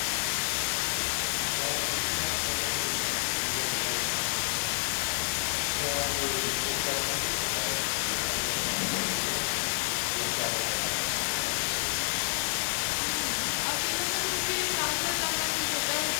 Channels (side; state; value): right; silent; digital silence